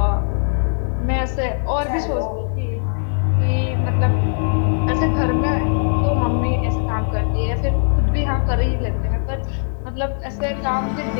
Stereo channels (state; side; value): silent; right; digital silence